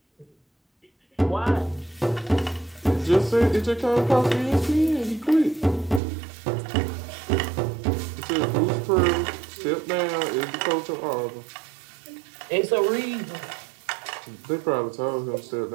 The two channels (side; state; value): left; drops out; at 6.0 s